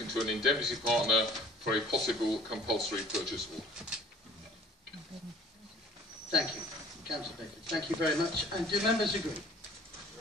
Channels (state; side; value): normal; both; correlation 0.52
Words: to an indemnity partner for a possible compulsory purchase order. Thank you, Councillor Baker. Thank you very much. And do members agree?